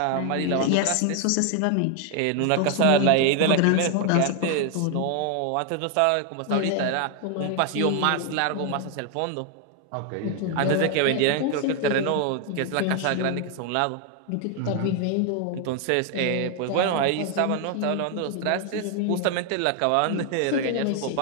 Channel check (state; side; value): different; both; correlation 0.01